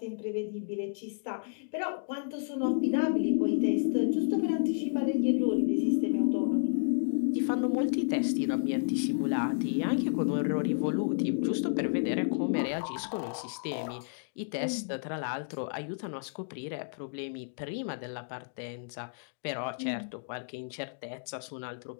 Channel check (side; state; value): right; silent; digital silence